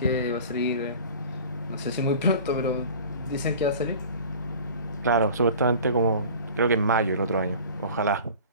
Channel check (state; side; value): inverted; both; correlation -0.42